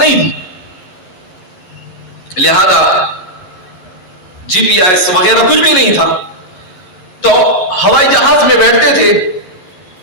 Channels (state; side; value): late; right; 11 ms